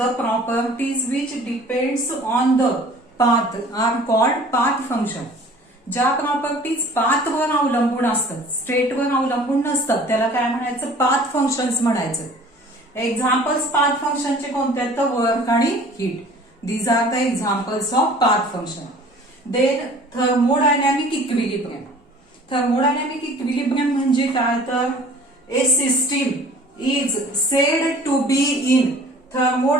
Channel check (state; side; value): normal; both; correlation 0.48